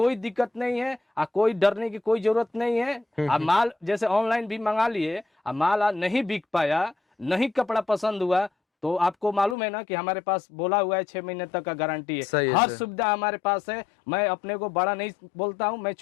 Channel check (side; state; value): right; drops out; at 9.6 s